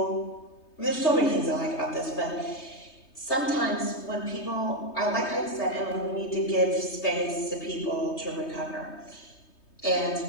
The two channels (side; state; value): right; late; 3.3 ms